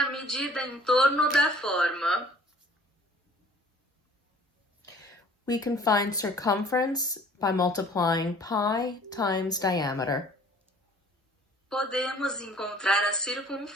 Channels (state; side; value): normal; both; correlation 0.53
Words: medida em torno da forma. We can find circumference by multiplying pi times diameter. Podemos encontrar a